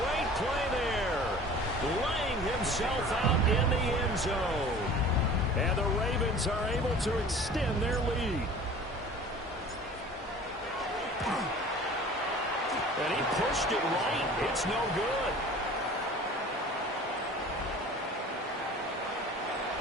play there. Laying himself out in the end zone. And the Ravens are able to extend their lead. And he pushed it right. It's no good.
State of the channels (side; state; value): both; normal; correlation 0.44